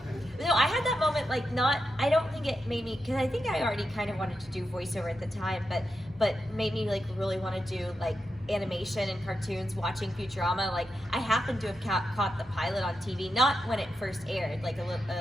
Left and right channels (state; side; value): normal; both; correlation 0.87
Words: No, I had that moment, like, I don't think it made me, because I think I already kind of wanted to do voiceover at the time, but made me, like, really want to do, like, animation and cartoons, watching Futurama. Like, I happened to have caught the pilot on TV, not when it first aired, like,